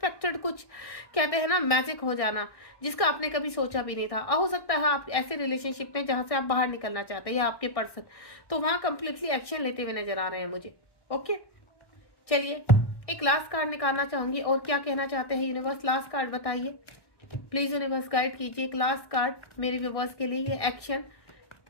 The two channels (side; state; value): right; late; 1.6 ms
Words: कुछ कहते हैं ना मैजिक हो जाना, जिसका आपने कभी सोचा भी नहीं था। हो सकता है आप ऐसे रिलेशनशिप में जहां से आप बाहर निकलना चाहते हैं, या आपके पर्सन तो वहां कंप्लीटली एक्शन लेते हुए नजर आ रहे हैं मुझे। ओके, चलिए एक लास्ट कार्ड निकालना चाहूंगी, और क्या कहना चाहते हैं यूनिवर्स, लास्ट कार्ड बताइए प्लीज। यूनिवर्स गाइड कीजिए एक लास्ट कार्ड मेरे व्यूअर्स के लिए। ये एक्शन